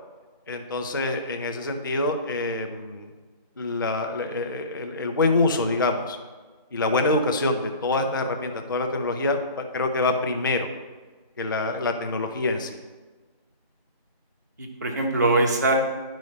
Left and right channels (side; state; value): both; inverted; correlation -0.38